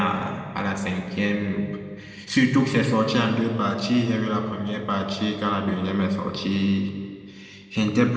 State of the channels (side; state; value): both; identical; correlation 1.00